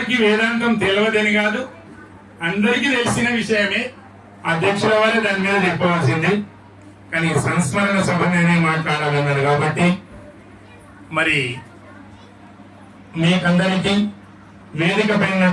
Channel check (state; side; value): identical; both; correlation 1.00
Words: వేదాంతం తెలియదని కాదు, అందరికీ తెలిసిన విషయమే, అధ్యక్షుల వారే దాని మీద చెప్పవలసింది. కానీ సంస్మరణ సభ నేనే మాట్లాడాలన్నారు కాబట్టి మరి మీకందరికీ వేదిక